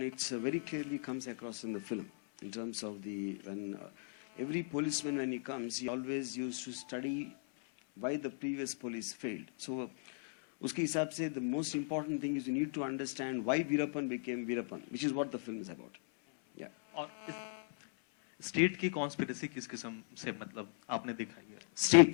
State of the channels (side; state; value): right; silent; 53 dB below the other